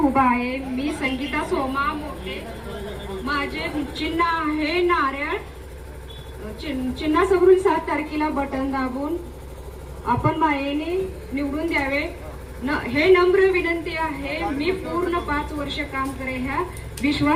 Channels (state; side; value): identical; both; correlation 1.00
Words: आहे। मी संगीता सोमा मोठे, माझे चिन्ह आहे नारळ। चिन्हासमोरून 7 तारखेला बटन दाबून आपण मायेने निवडून द्यावे हे नम्र विनंती आहे। मी पूर्ण 5 वर्ष काम करेन ह्या